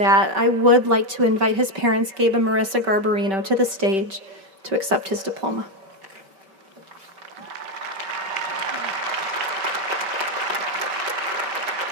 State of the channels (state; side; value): late; left; 5.2 ms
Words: I would like to invite his parents, Gabe and Marissa Garbarino, to the stage to accept his diploma.